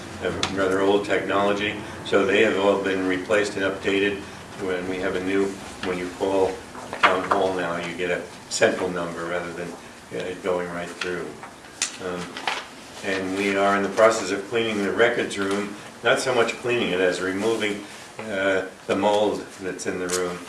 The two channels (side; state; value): both; identical; correlation 1.00